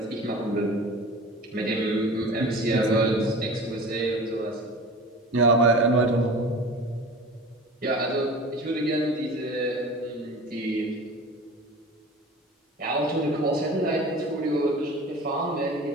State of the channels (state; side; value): normal; both; correlation 0.37